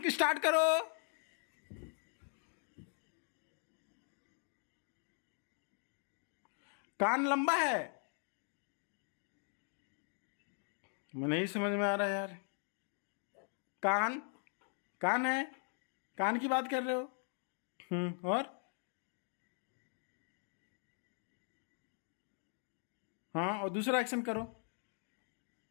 स्टार्ट करो। कान लंबा है? मैं नहीं समझ में आ रहा यार। कान कान है, कान की बात कर रहे हो? और हाँ, और दूसरा एक्शन करो।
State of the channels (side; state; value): right; silent; 51 dB below the other